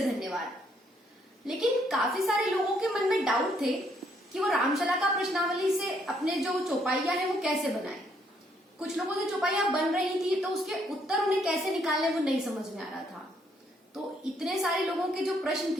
धन्यवाद। लेकिन काफी सारे लोगों के मन में डाउट थे कि वो रामशलाका प्रश्नावली से अपने जो चौपाइयां हैं वो कैसे बनाएं। कुछ लोगों से चौपाइयां बन रही थी तो उसके उत्तर उन्हें कैसे निकालने वो नहीं समझ में आ रहा था। तो इतने सारे लोगों के जो प्रश्न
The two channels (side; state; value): both; normal; correlation 0.70